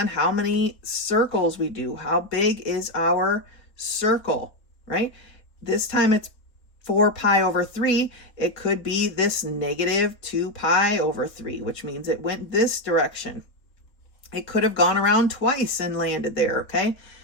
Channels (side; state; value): right; late; 3.7 ms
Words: how many circles we do. How big is our circle, right? This time it's 4 pi over 3. It could be this negative 2 pi over 3, which means it went this direction. It could have gone around twice and landed there, okay?